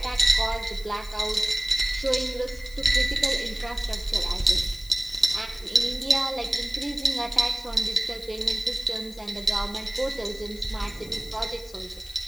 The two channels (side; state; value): left; noise; hiss, 21 dB below the sound